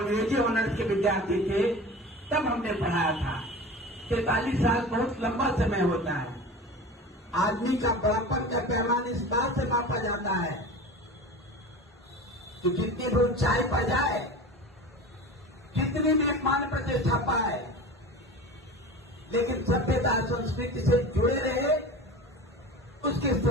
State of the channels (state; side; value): normal; both; correlation 0.34